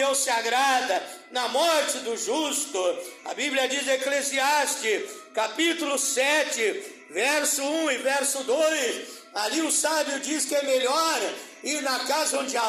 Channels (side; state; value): both; identical; correlation 1.00